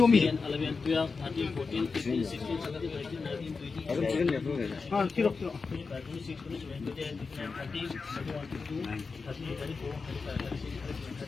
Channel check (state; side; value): quieter; right; 4.6 dB